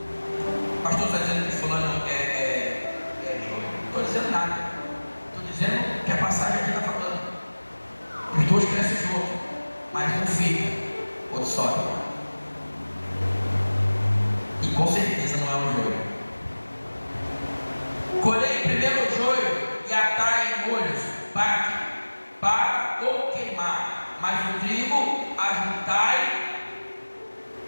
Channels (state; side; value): inverted; both; correlation -1.00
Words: O pastor está dizendo que fulano é joio. Não estou dizendo nada. Estou dizendo que a passagem aqui está falando. Os dois crescem juntos, mas um fica, outro sobe. E com certeza não é um joio. Colhei primeiro o joio e atai em molhos para ou queimar, mas o trigo ajuntai